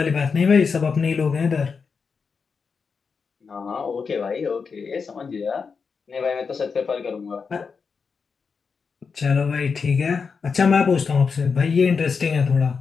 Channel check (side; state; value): right; quieter; 5.4 dB